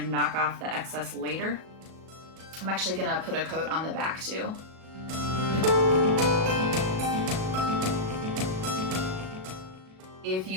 knock off the excess later. I'm actually gonna put a coat on the back too. If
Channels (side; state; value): left; late; 37 ms